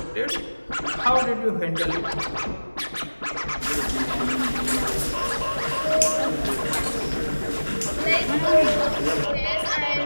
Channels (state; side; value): inverted; both; correlation -1.00